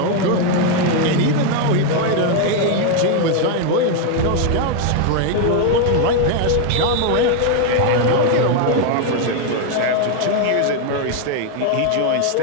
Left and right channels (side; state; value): both; different; correlation 0.01